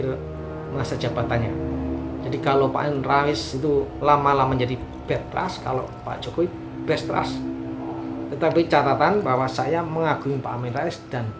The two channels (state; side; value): identical; both; correlation 1.00